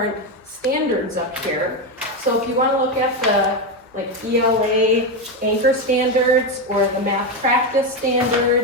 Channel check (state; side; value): normal; both; correlation 0.11